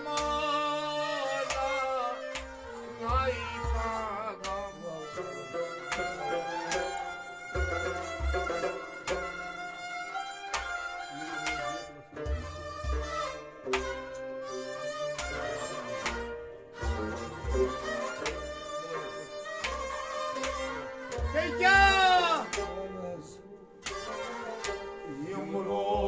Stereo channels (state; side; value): identical; both; correlation 1.00